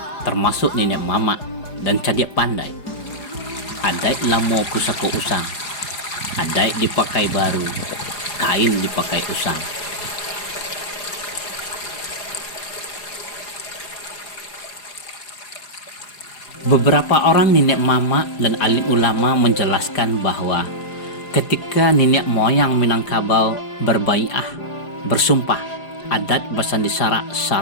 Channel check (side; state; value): right; late; 4.9 ms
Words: termasuk nenek mama dan cadik pandai. Adat lamo pusako usang, adat dipakai baru, kain dipakai usang. Beberapa orang nenek mama dan alim ulama menjelaskan bahwa ketika nenek moyang Minangkabau berbaiah, bersumpah adat basandi